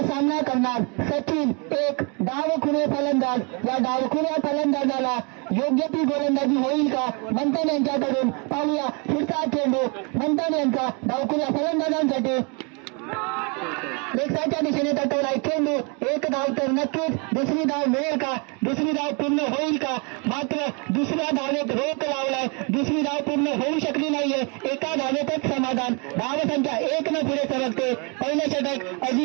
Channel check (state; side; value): quieter; left; 33.4 dB